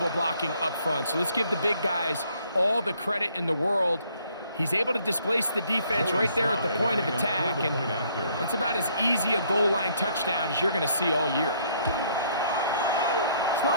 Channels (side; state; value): both; inverted; correlation -0.65